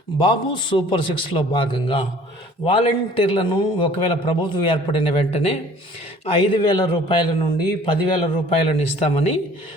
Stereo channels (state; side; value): normal; both; correlation 0.52